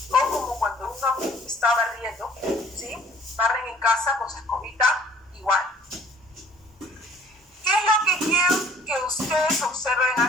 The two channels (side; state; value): both; normal; correlation 0.55